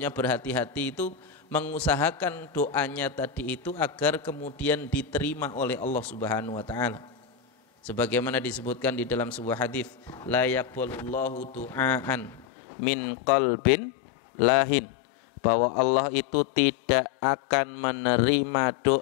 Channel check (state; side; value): drops out; right; at 12.5 s